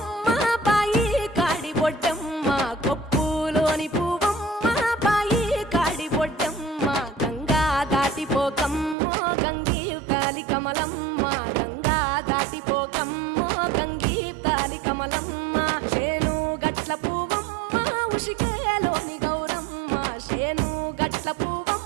బాయి కాడి బొడ్డమ్మ, కొప్పులోని పువ్వమ్మ బాయి కాడి బొడ్డమ్మ, గంగా దాటిపోకమ్మో గంగీ తాలి కమలమ్మ, గంగా దాటిపోకమ్మో గంగీ తాలి కమలమ్మ, చేను గట్ల పువ్వమ్మ ఉషికేలోని గౌరమ్మ, చేను గట్ల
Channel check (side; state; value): left; drops out; at 9.0 s